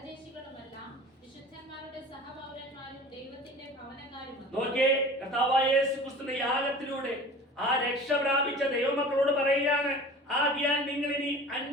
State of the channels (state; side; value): normal; both; correlation 0.40